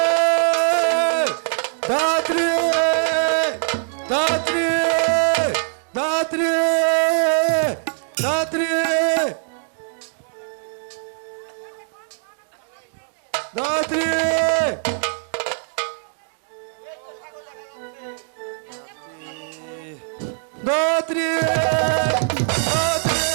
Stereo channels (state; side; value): silent; left; 64 dB below the other